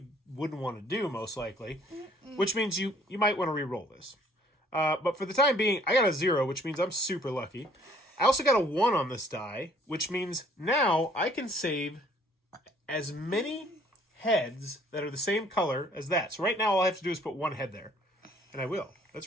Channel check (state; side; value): normal; both; correlation 0.59